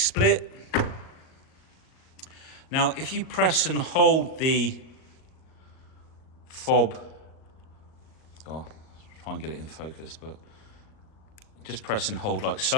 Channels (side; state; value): right; late; 38 ms